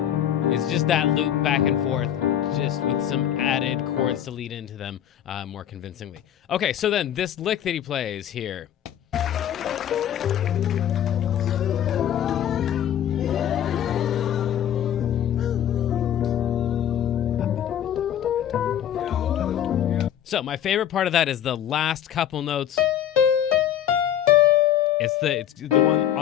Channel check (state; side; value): quieter; right; 10.5 dB